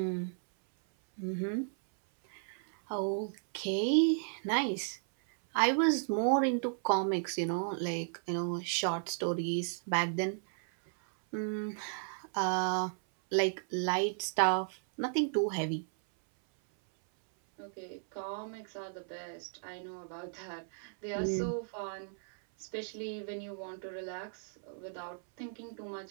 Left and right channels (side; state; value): left; silent; 55 dB below the other